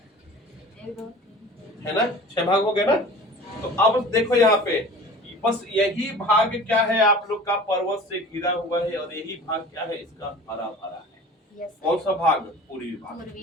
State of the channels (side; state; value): both; normal; correlation 0.41